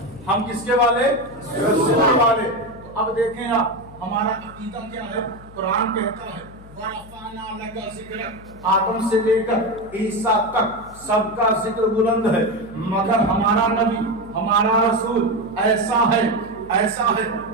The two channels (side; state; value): left; noise; hum, 20 dB below the sound